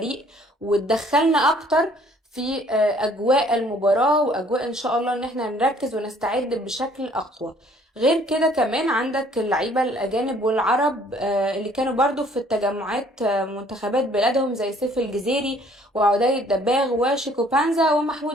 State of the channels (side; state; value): both; normal; correlation 0.59